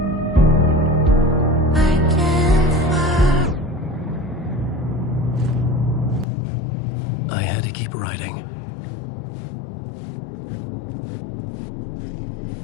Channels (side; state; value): right; drops out; at 6.2 s